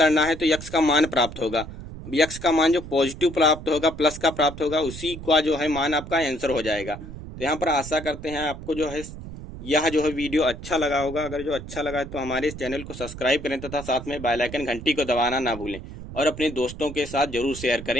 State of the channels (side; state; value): right; noise; rumble, 12 dB below the sound